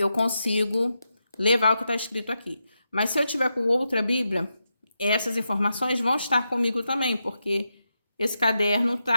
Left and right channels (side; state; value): both; inverted; correlation -0.86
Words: consigo levar o que está escrito aqui. Mas se eu tiver com outra Bíblia, essas informações vão estar comigo também, porque esse caderno